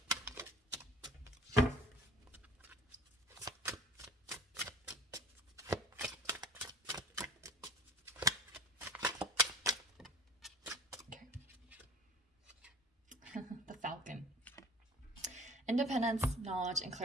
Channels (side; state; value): both; normal; correlation 0.46